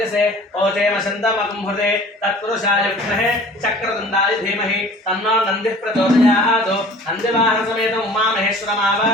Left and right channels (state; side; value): normal; both; correlation 0.46